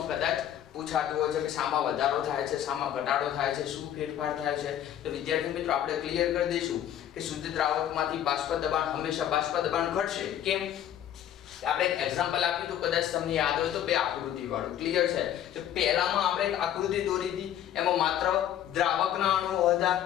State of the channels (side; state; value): right; quieter; 10.9 dB